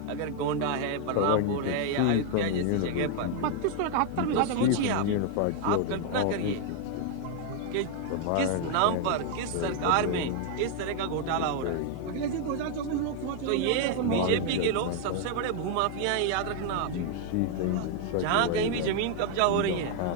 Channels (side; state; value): both; different; correlation 0.00